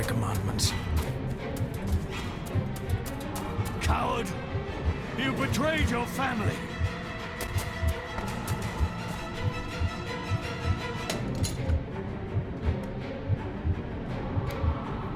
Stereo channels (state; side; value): identical; both; correlation 1.00